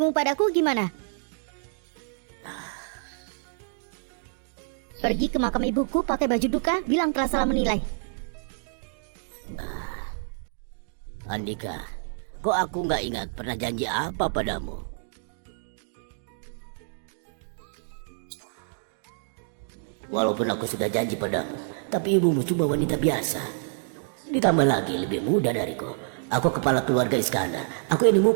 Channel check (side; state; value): left; silent; digital silence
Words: padaku gimana? Pergi ke makam ibuku pakai baju duka, bilang telah salah menilai. Andika, kok aku nggak ingat pernah janji apa padamu? Walaupun aku sudah janji padamu, tapi ibumu cuma wanita biasa. Ditambah lagi lebih muda dariku. Aku kepala keluarga Iskandar. Aku ini